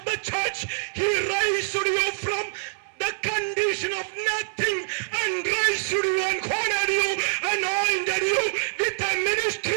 the church, he raised you from the condition of nothing and raised you and honored you, anointed you with a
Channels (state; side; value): silent; left; digital silence